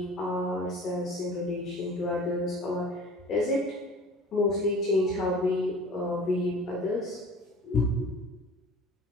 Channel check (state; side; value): normal; both; correlation 0.43